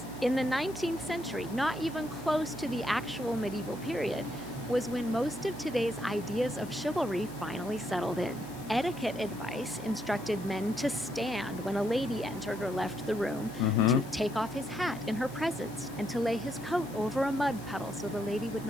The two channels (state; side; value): noise; left; hiss, 19 dB below the sound